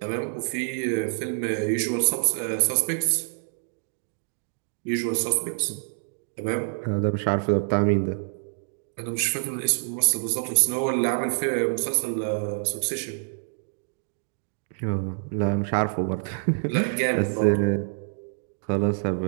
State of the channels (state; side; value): silent; left; digital silence